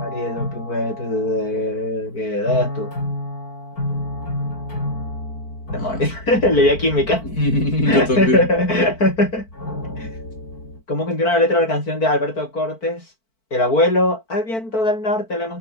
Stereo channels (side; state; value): right; late; 4.5 ms